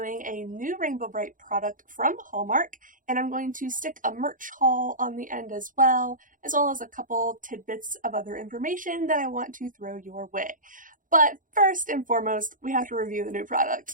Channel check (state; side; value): late; left; 0.39 ms